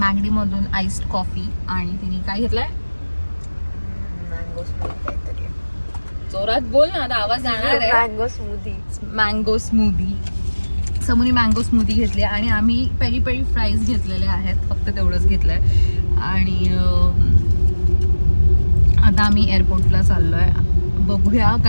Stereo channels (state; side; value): inverted; both; correlation -1.00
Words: आईस्ड कॉफी आणि तिने काय घेतलंय मँगो स्मूदी. जोरात बोल ना, आता आवाज जाणार आहे. Mango smoothie. Mango smoothie. समोनी मँगो स्मूदी घेतली आणि आम्ही पेरी पेरी फ्राईज घेतलेले आहेत. फक्त तेवढंच घेतलंय. आणि आता आम्ही एअरपोर्टला चाललोय. बघूया